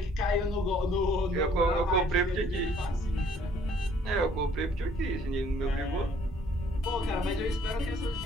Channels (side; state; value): both; normal; correlation 0.60